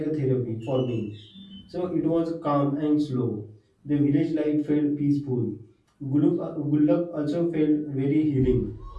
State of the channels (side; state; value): both; identical; correlation 1.00